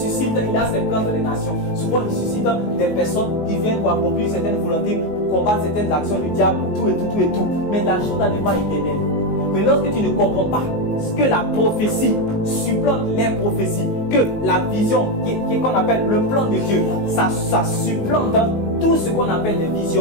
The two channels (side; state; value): right; late; 19 ms